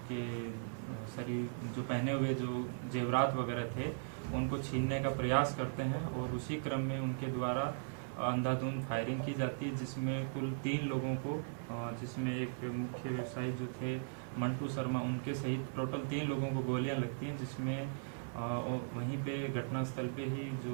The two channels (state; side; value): silent; left; 52 dB below the other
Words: शरीर जो पहने हुए जो जेवरात वगैरह थे उनको छीनने का प्रयास करते हैं और उसी क्रम में उनके द्वारा अंधाधुंध फायरिंग की जाती है, जिसमें कुल 3 लोगों को जिसमें एक मुख्य व्यवसायी जो थे मंटू शर्मा उनके सहित टोटल 3 लोगों को गोलियां लगती हैं, जिसमें वहीं पे घटनास्थल पे ही